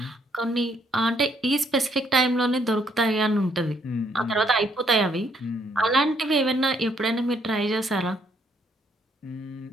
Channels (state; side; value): normal; both; correlation 0.70